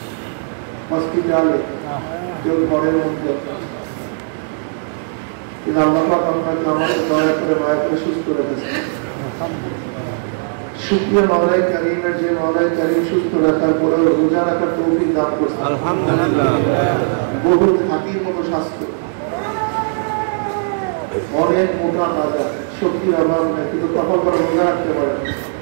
হসপিটালে কেউ ঘরের মধ্যে আল্লাহ পাক আপনাকে আমাকে দয়া করে মায়া করে সুস্থ রেখেছেন। শুকরিয়া মাওলাই কারীমের যে মাওলাই কারীম সুস্থ রাখার পরে রোজা রাখার তৌফিক দান করেছেন। আলহামদুলিল্লাহ। বহু হাতির মতো স্বাস্থ্য, অনেক মোটা তাজা, শক্তির অভাব নেই, কিন্তু কপাল করে রোজা রাখতে পারেন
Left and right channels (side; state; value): left; silent; digital silence